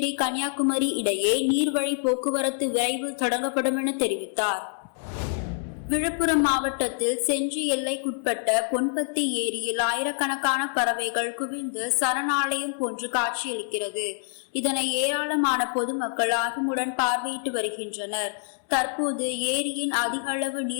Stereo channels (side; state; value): right; silent; 61 dB below the other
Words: கன்னியாகுமரி இடையே நீர்வழி போக்குவரத்து விரைவில் தொடங்கப்படும் என தெரிவித்தார். விழுப்புரம் மாவட்டத்தில் செஞ்சி எல்லைக்குட்பட்ட பொன்பத்தி ஏரியில் ஆயிரக்கணக்கான பறவைகள் குவிந்து சரணாலயம் போன்று காட்சியளிக்கிறது. இதனை ஏராளமான பொதுமக்கள் ஆர்வமுடன் பார்வையிட்டு வருகின்றனர். தற்போது ஏரியின் அதிக அளவு